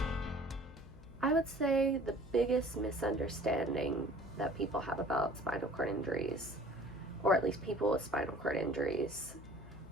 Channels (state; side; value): noise; left; hum, 18 dB below the sound